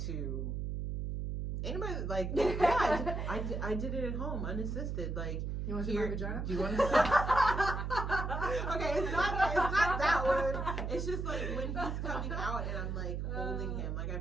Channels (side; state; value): right; noise; hum, 2 dB below the sound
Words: to anybody, like, I did it at home, unassisted. Like, you want to see my vagina? Do you want to see? Okay, it's not that one. It's just like when he's coming out and I'm like holding him. Like, I